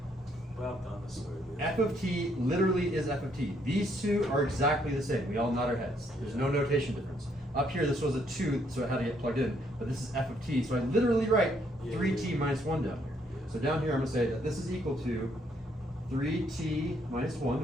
but I've done this already. F of t literally is f of t. These two are exactly the same. We all nod our heads. There's no notation difference. Up here, this was a 2, so it had to get plugged in. But this is f of t, so I literally write 3t minus 1 down here. So down here, I'm going to say that this is equal to 3t minus 1.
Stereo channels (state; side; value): normal; both; correlation 0.70